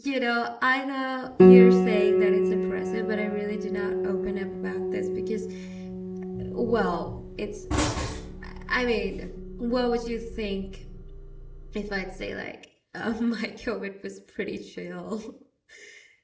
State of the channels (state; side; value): identical; both; correlation 1.00